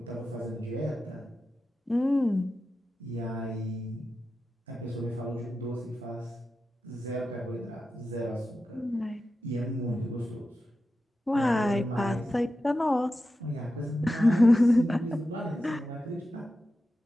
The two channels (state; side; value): normal; both; correlation 0.91